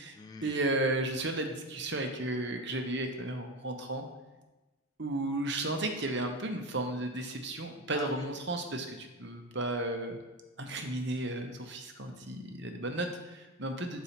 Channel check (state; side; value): normal; both; correlation 0.21